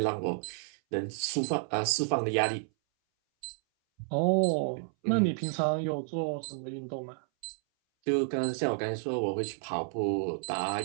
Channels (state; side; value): silent; left; 57 dB below the other